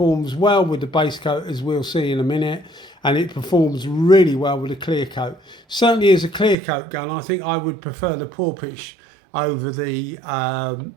well with the base coat, as we'll see in a minute, and it performs really well with the clear coat. Certainly as a clear coat gun, I think I would prefer the Porpoise over the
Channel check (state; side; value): drops out; left; at 6.6 s